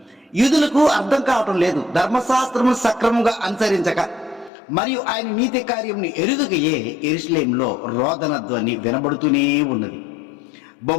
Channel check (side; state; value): right; drops out; at 4.5 s